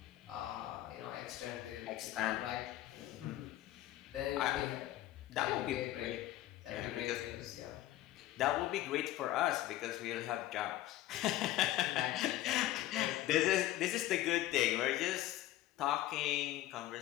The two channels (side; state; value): right; quieter; 14.5 dB